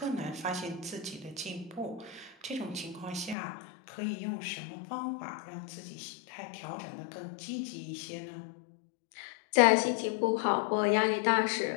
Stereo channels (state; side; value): drops out; right; at 3.4 s